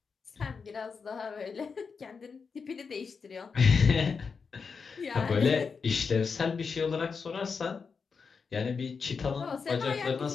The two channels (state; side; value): quieter; right; 5.4 dB